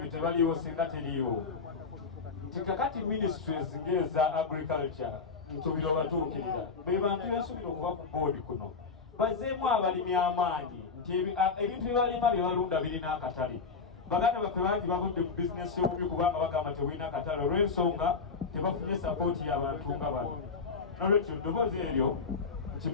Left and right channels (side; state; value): right; quieter; 4.9 dB